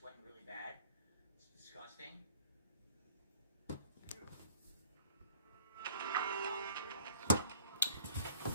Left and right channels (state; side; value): inverted; both; correlation -0.52